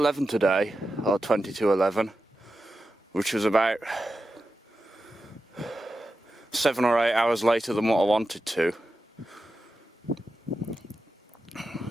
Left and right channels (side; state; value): both; normal; correlation 0.91